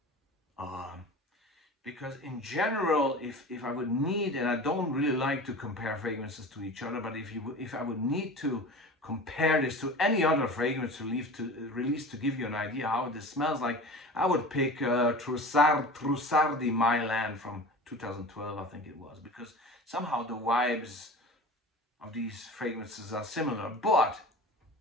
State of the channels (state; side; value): normal; both; correlation 0.36